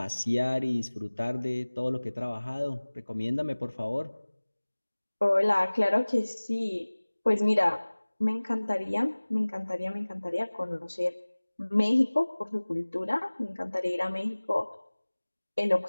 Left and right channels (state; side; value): inverted; both; correlation -1.00